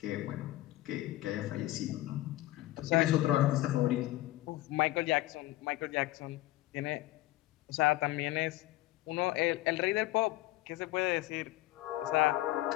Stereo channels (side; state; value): right; quieter; 17.2 dB